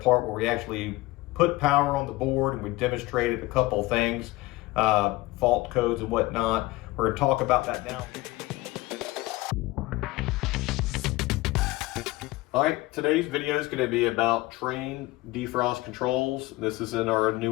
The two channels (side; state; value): right; quieter; 19.9 dB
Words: where we actually put power on the board, and we demonstrated a couple things, fault codes and whatnot. We're going to talk about that now. All right, today's video is going to be about Trane defrost controls. This is in our